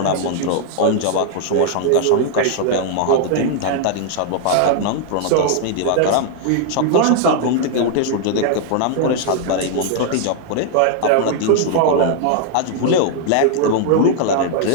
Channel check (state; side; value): different; both; correlation -0.01